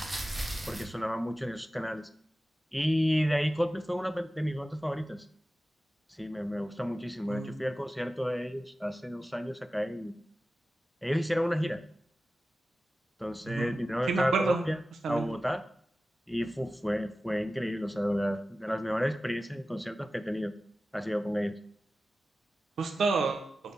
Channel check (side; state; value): both; normal; correlation 0.95